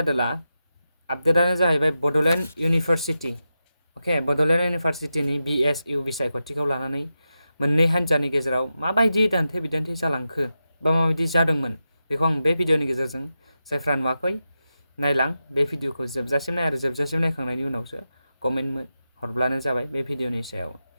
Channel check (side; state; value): both; inverted; correlation -0.90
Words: आपडेटानो जाहैबाय बड'लेण्ड इउनिभारसिटि अके बड'लेण्ड इउनिभारसिटिनि BSU बिसायख'थिखौ लानानै मोननै हान्जानि गेजेराव माबायदि दान्थे बिदान्थे जालांखो बा माबायदि जादोंमोन बेखौ आं बे भिडिअनि गेजेरजों जायफ्रा नुवाखै नायलां बे भिडिअखौ जोबजासिम नाय आरो जोबजासिम नायखांनायनि उनावसो कमेन्ट हरब्लानो जाबाय बे भिडिअनि सायाव